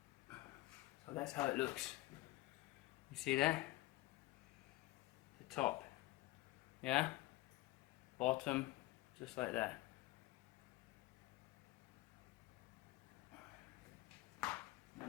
that's how it looks. You see that? The top. Yeah? Bottom, just like that.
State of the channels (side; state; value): right; quieter; 18.8 dB